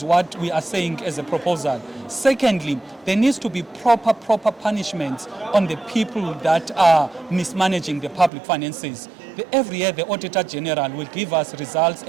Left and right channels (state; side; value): drops out; left; at 8.3 s